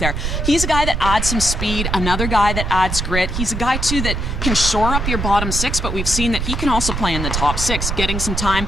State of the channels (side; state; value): right; noise; rumble, 2 dB below the sound